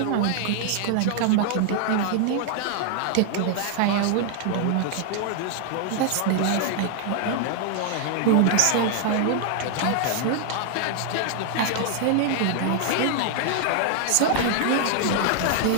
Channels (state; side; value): different; both; correlation 0.00